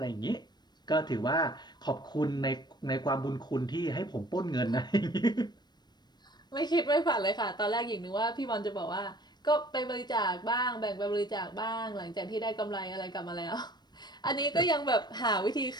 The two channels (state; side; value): late; right; 0.21 ms